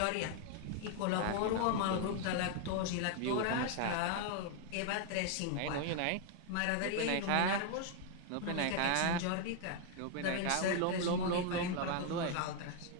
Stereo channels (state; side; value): different; both; correlation 0.00